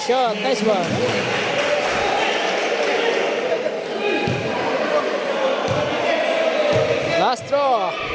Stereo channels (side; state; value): both; identical; correlation 1.00